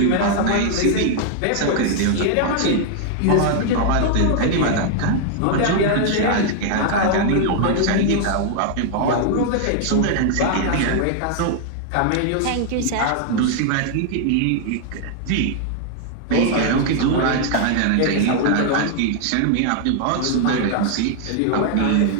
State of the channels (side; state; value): both; different; correlation 0.00